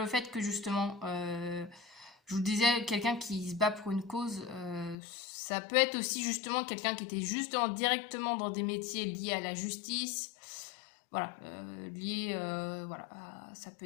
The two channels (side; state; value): right; drops out; at 5.0 s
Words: fait que justement, je vous disais, quelqu'un qui se bat pour une cause, ça peut être aussi justement quelqu'un qui était justement directement dans des métiers liés à la justice. Voilà, voilà, ça peut